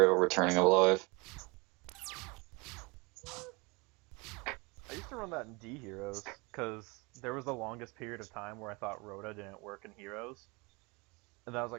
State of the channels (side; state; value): left; quieter; 27.4 dB